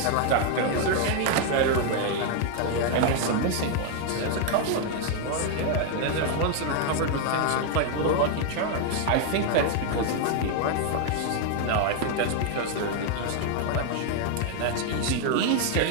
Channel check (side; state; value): both; different; correlation 0.00